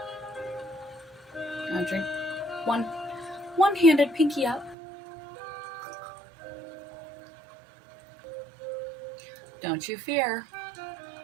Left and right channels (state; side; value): drops out; left; at 4.8 s